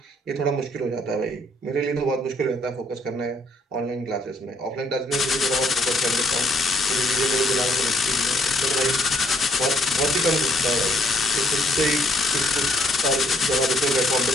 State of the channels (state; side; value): normal; both; correlation 0.67